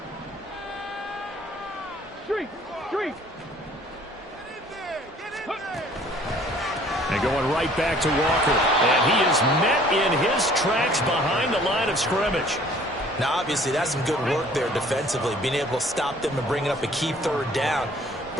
And going right back to Walker. And he is met in his tracks behind the line of scrimmage. Now, obviously, that's some good work there defensively, being able to stop them and bringing up a key 3rd down.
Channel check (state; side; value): normal; both; correlation 0.55